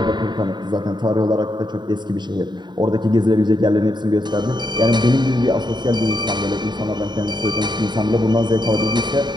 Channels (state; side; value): late; left; 0.21 ms